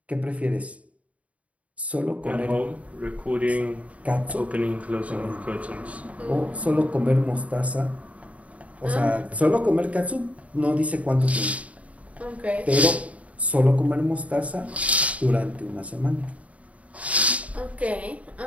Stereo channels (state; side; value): late; left; 0.067 ms